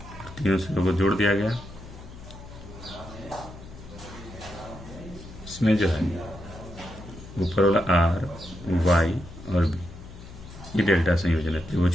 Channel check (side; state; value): left; noise; hum, 16 dB below the sound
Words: तीनों सिरों को जोड़ दिया गया। इसमें जो है ऊपर वाला R, Y और B, ये डेल्टा संयोजन है।